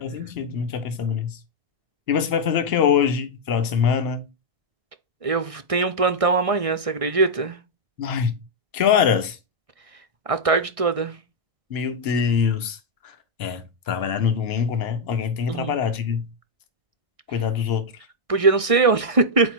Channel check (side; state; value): left; late; 1.6 ms